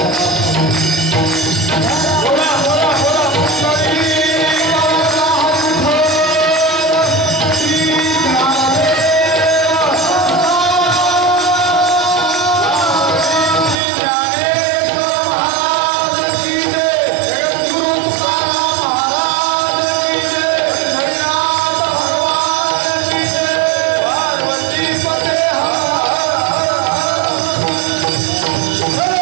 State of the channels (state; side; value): drops out; left; at 13.8 s